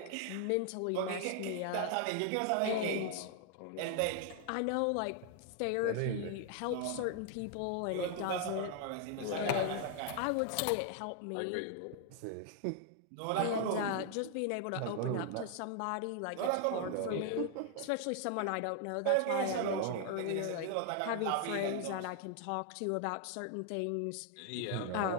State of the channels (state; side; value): different; both; correlation 0.00